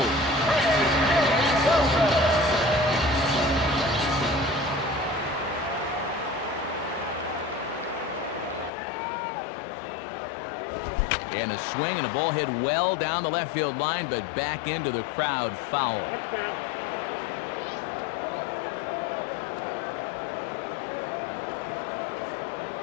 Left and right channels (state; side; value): drops out; right; at 8.7 s